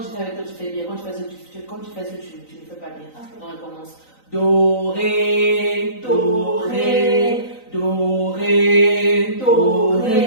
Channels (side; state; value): right; late; 3.9 ms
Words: je fais avec toi, tu fais bien. Quand tu fais ça, tu ne fais pas bien. Donc, on commence. Do, ré, do, ré, do, ré, do,